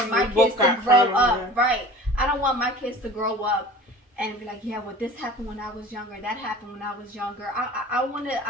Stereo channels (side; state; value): both; normal; correlation 0.42